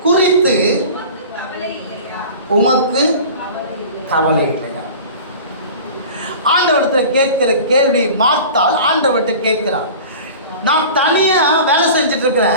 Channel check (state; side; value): inverted; both; correlation -0.39